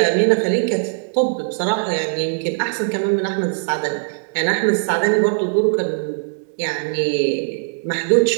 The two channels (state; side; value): silent; left; digital silence